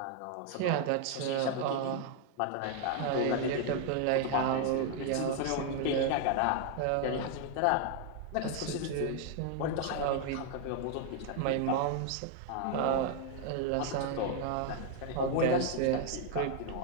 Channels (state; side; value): different; both; correlation 0.00